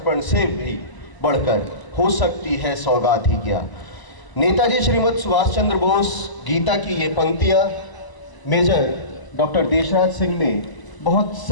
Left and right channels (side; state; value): right; late; 1.0 ms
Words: से भी बढ़कर हो सकती है सौगात ही क्या। नेताजी श्रीमद सुभाष चंद्र बोस गीता की ये पंक्तियाँ मेजर डॉक्टर देशराज सिंह ने बहुत